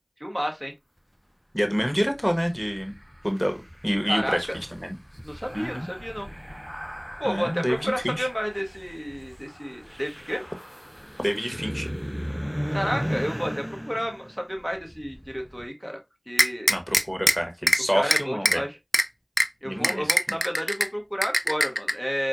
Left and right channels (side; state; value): both; identical; correlation 1.00